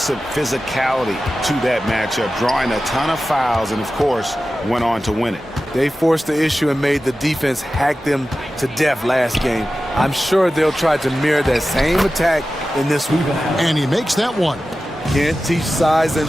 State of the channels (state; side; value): normal; both; correlation 0.94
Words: physicality to that matchup, drawing a ton of fouls, and of course, went on to win it. They forced the issue and made the defense hack them to death last game. I'm sure they'll try to mirror that same attack in this week. And he makes that one. Can't teach size